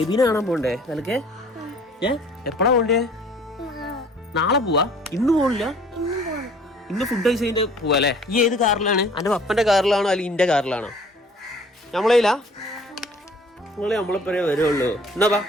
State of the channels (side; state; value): both; normal; correlation 0.53